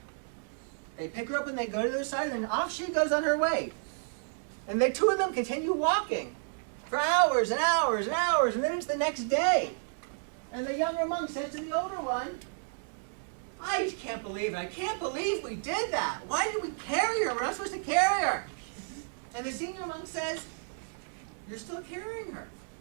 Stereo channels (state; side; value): silent; left; digital silence